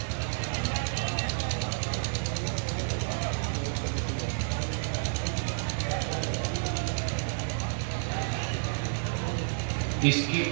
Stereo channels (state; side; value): silent; left; 58 dB below the other